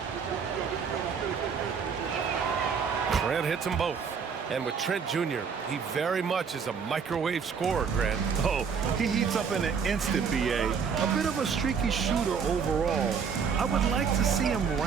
Trent hits them both. And with Trent Jr., he very much is a microwave scorer, Grant. Oh, he heats up in an instant, B.A. A bit of a streaky shooter overall. I would like to see him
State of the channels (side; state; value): left; quieter; 6.3 dB